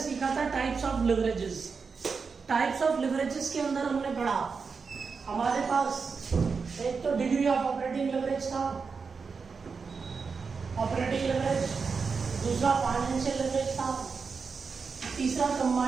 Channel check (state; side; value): quieter; left; 5.2 dB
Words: था types of leverages. Types of leverages के अंदर हमने पढ़ा हमारे पास एक तो डिग्री ऑफ ऑपरेटिंग लिवरेज था, ऑपरेटिंग लिवरेज, दूसरा फाइनेंशियल लिवरेज था, तीसरा